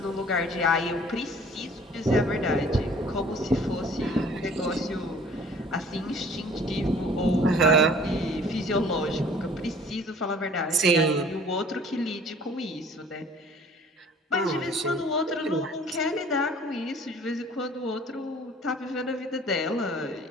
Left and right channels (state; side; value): normal; both; correlation 0.51